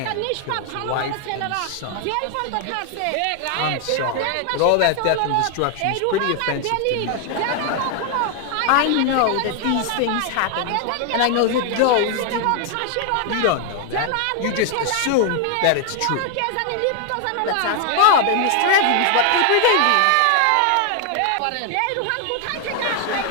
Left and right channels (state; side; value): different; both; correlation 0.00